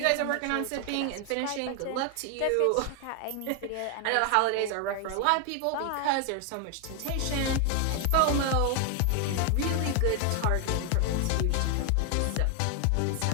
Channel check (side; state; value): both; different; correlation 0.00